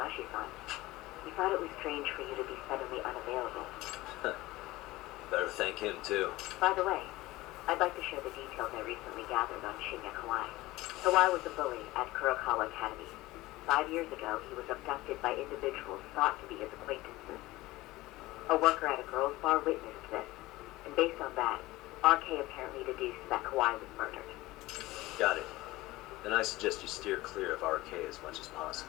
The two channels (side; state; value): right; quieter; 18.8 dB